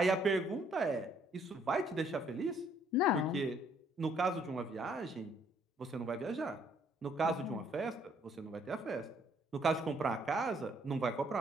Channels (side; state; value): both; normal; correlation 0.65